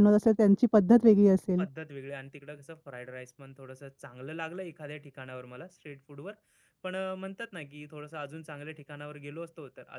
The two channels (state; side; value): identical; both; correlation 1.00